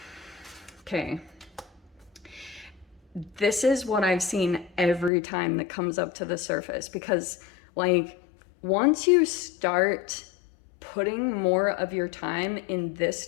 Okay. This is what I've seen every time that comes up to the surface, because like once you start putting more of your time in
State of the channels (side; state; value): right; drops out; at 5.1 s